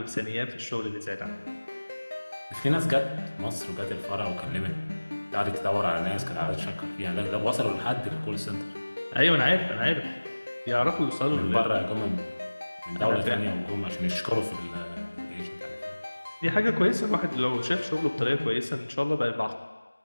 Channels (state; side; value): inverted; both; correlation -1.00